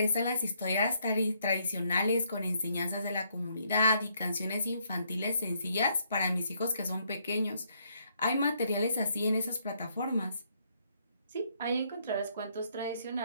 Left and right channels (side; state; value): both; inverted; correlation -0.71